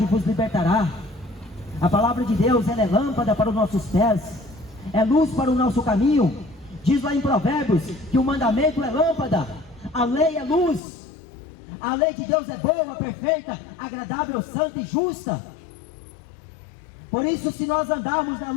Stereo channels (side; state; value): right; drops out; at 10.8 s